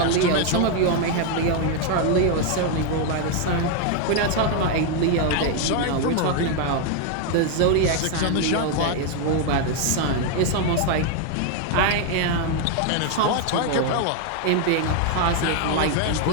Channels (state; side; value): different; both; correlation 0.01